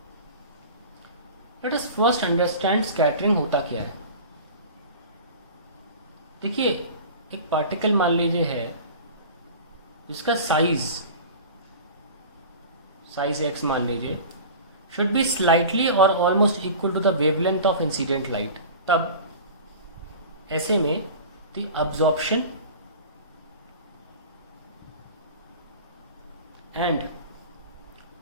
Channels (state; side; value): inverted; both; correlation -0.37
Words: Let us first understand scattering होता क्या है। देखिए, एक particle मान लीजिए है जिसका साइज x मान लीजिए शुड बी स्लाइटली और almost equal to the wavelength of incident light. तब ऐसे में the absorption and